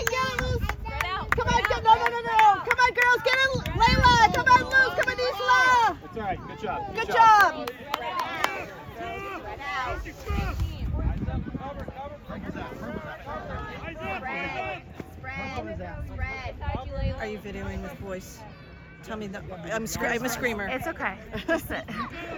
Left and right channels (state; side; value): identical; both; correlation 1.00